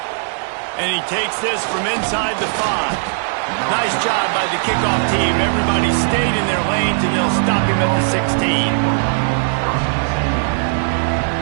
And he takes this from inside the 5. Nice job by the kickoff team. Everybody stayed in their lanes, and they'll stop him at the 16.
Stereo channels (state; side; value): silent; left; digital silence